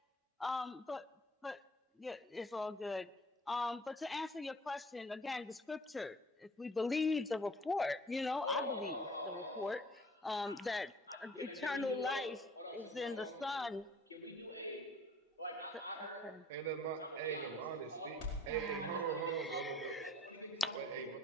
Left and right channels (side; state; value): both; normal; correlation 0.52